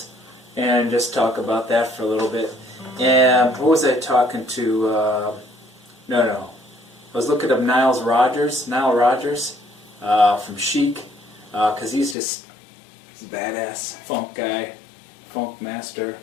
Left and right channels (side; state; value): right; drops out; at 12.2 s